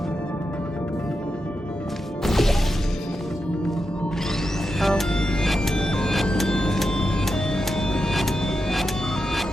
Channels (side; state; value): both; normal; correlation 0.88